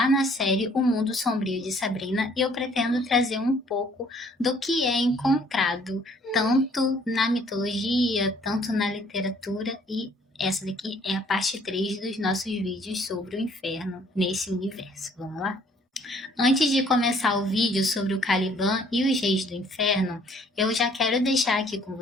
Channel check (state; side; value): normal; both; correlation 0.60